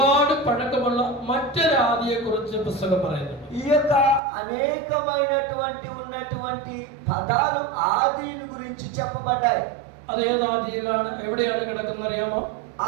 പഴക്കമുള്ള മറ്റൊരു ആദിയെ കുറിച്ച് പുസ്തകം പറയുന്നുണ്ട്. ఈ యొక్క అనేకమైనటువంటి ఉన్నటువంటి పదాలు ఆదిని గురించి చెప్పబడ్డాయి. അത് ഏത് ആദിയിലാണ്, ఎవిടെയാണ് കിടക്കുന്നത് അറിയാമോ?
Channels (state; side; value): drops out; left; at 4.2 s